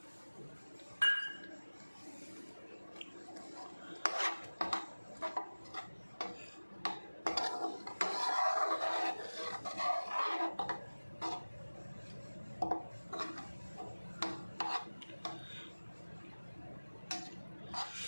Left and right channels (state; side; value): inverted; both; correlation -1.00